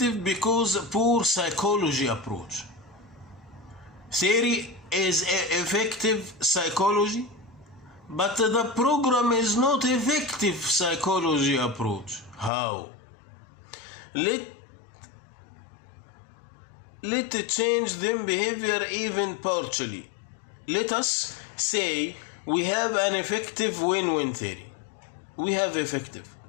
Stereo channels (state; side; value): drops out; right; at 12.5 s